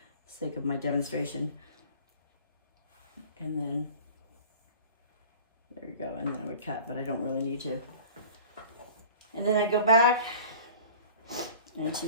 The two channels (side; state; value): both; inverted; correlation -0.43